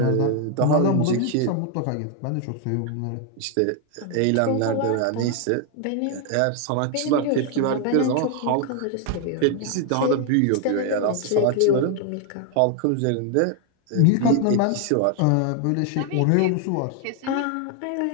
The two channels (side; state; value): both; different; correlation 0.00